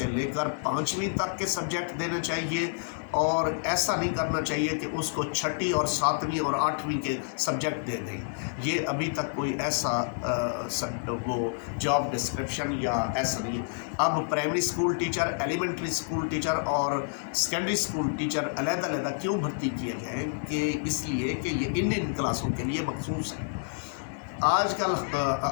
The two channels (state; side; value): silent; right; 59 dB below the other